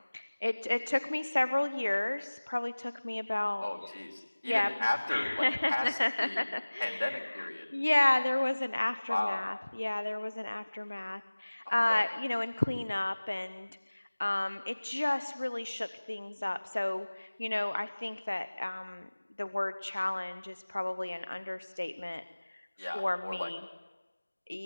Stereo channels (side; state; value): both; inverted; correlation -1.00